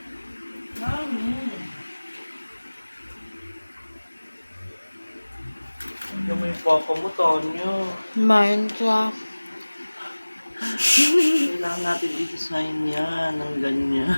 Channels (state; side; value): inverted; both; correlation -1.00